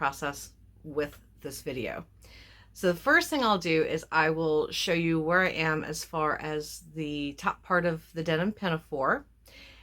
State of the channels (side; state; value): both; identical; correlation 1.00